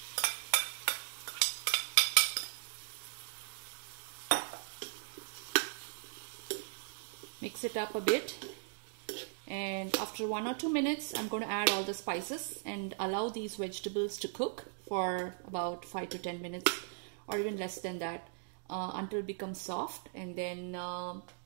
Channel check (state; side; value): silent; left; digital silence